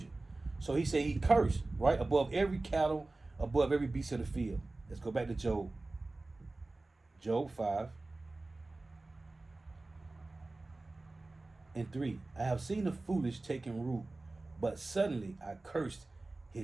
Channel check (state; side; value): quieter; left; 3.1 dB